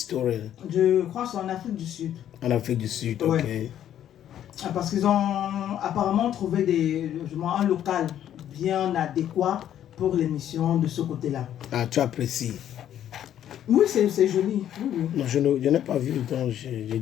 Je crois que c'est en Afrique du Sud. En Afrique du Sud, Ouais. ok. Parce qu'ils ont apparemment trouvé un local bien adéquat pour l'émission de ce côté-là. Ah, tu apprécies? Oui, c'est joli. Oui. Non, je n'ai pas vu, donc je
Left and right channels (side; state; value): right; quieter; 10.8 dB